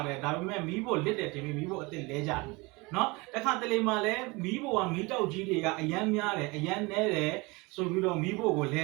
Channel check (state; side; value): quieter; left; 25.2 dB